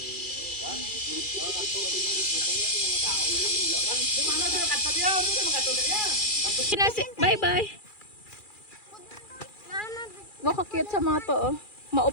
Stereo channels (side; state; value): right; late; 2.4 ms